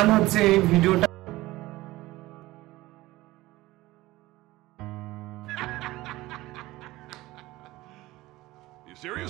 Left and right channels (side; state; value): left; quieter; 18.4 dB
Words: হচ্ছে এই ভিডিওটা। You